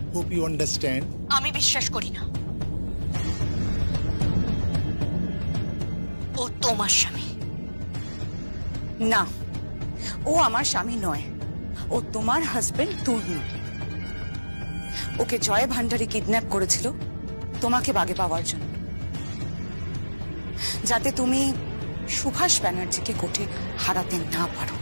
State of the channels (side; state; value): both; inverted; correlation -1.00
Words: Hope you understand. আমি বিশ্বাস করি না। ও তোমার স্বামী। না, ও আমার স্বামী নয়, ও তোমার হাজবেন্ড তর্ণ। ওকে জয় ভান্ডারী কিডন্যাপ করেছিল তোমাকে বাগে পাওয়ার জন্য, যাতে তুমি সুভাষ ব্যানার্জিকে কোর্টে হারাতে না পারো।